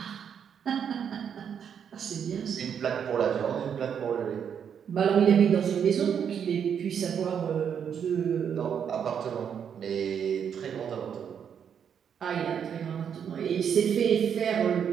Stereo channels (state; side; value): quieter; left; 7.9 dB